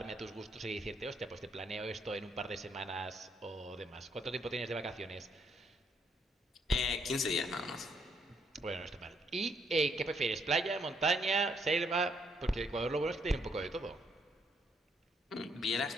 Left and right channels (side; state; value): both; normal; correlation 0.72